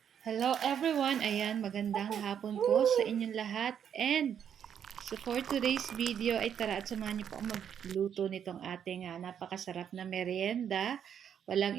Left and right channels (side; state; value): left; quieter; 8.5 dB